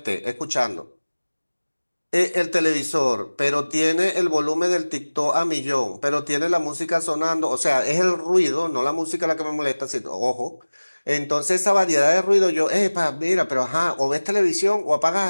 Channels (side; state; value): both; inverted; correlation -1.00